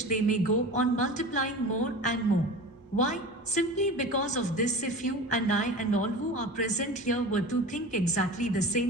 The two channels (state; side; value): normal; both; correlation 0.34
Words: they may go on multiplying more and more. Why? Simply because of this: if you and I and all who are present here were to think exactly the